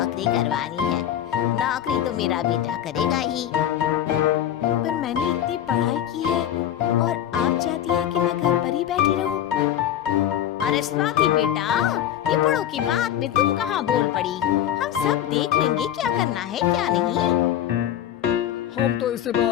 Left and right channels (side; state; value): right; quieter; 11.0 dB